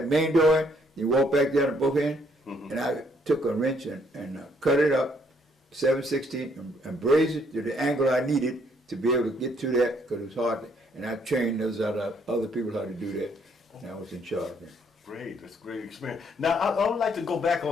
main door, you walk back there on both ends, and I took a wrench and cut it up, 7/16, and brazed it to the angle I needed to be able to get to that, because it was hard. And I trained those other people how to do that, and I was in charge of it. Great, that's a great experience. Now, I would like to go back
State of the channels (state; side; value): normal; both; correlation 0.68